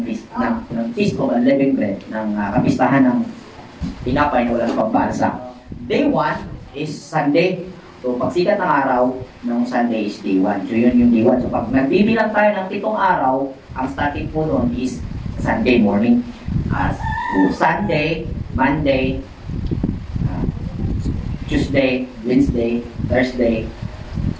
Feast of Unleavened Bread, ng kapistahan ng tinapay na walang pambansa. Day 1 is Sunday. So, pagsikat ng araw ng Sunday is day 1. So, yun yung day 1. So, pag nagbibilang tayo ng 7 araw, ang starting po noon is Sunday morning. So, Sunday, Monday, Tuesday, Wednesday, Thursday,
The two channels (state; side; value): identical; both; correlation 1.00